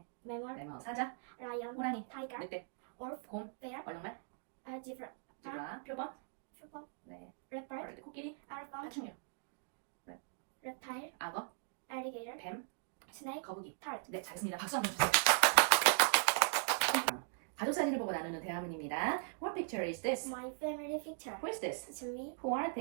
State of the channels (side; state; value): left; silent; digital silence